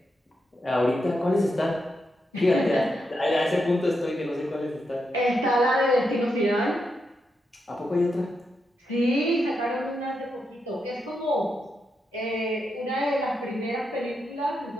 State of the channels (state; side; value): normal; both; correlation 0.84